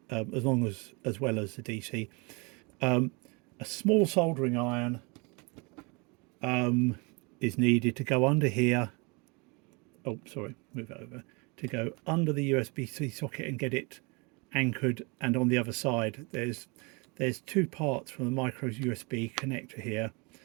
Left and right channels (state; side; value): quieter; left; 29.7 dB